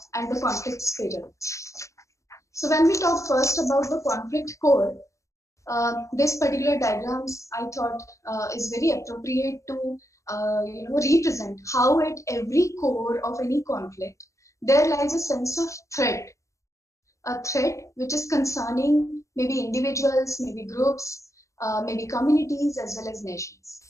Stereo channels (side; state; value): right; late; 0.15 ms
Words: and the conflict spiral. So when we talk first about the conflict core, this particular diagrams I thought is very appropriate to represent how at every core of any conflict there lies a sense of threat, a threat which is concerning maybe individuals, maybe groups, maybe communities, as well as nations.